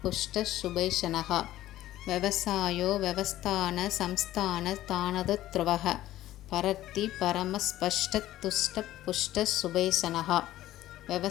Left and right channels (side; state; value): right; quieter; 14.4 dB